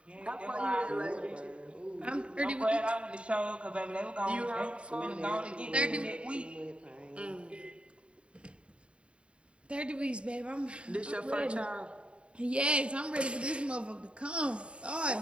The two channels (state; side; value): late; left; 0.057 ms